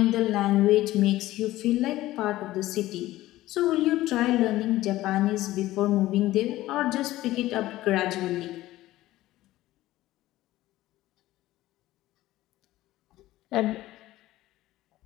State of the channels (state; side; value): quieter; right; 16.1 dB